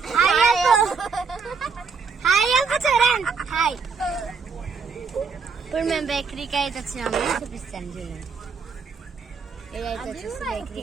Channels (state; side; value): quieter; left; 5.4 dB